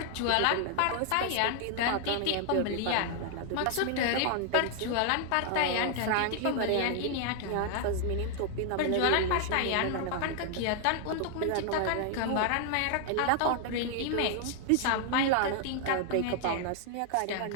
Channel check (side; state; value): both; different; correlation 0.00